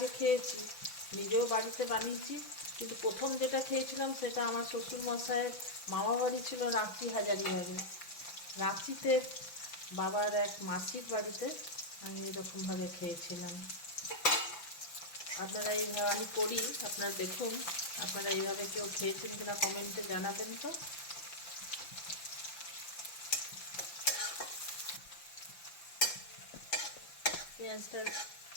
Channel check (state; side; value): late; right; 5.9 ms